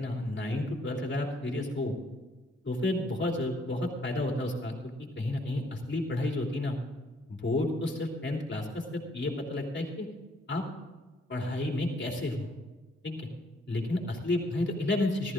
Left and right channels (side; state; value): both; normal; correlation 0.67